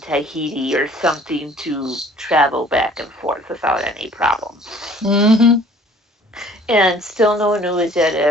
or something to travel back and forth without any problem. Mm-hmm. And still no news yet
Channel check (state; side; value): normal; both; correlation 0.53